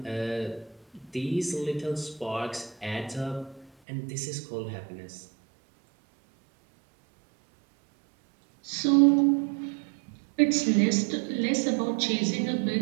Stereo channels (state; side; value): drops out; left; at 3.7 s